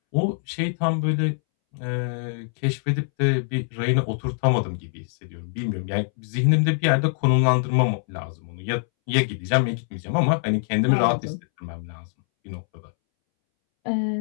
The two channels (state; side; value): silent; right; 63 dB below the other